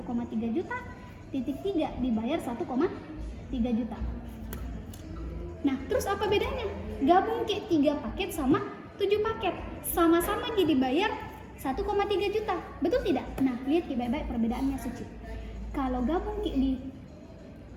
juta, titik 3 dibayar 1,3 juta. Nah, terus apa bedanya? Gabung 3 paket sama 7 paket, sama-sama jadi bayar 1,3 juta, betul tidak? Nah, lihat Ki baik-baik perbedaannya Suci. Kalau gabung Ki di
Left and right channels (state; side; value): identical; both; correlation 1.00